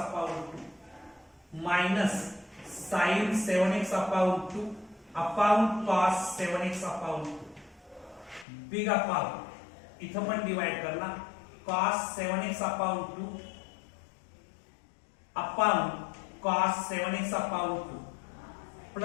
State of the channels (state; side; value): drops out; right; at 8.5 s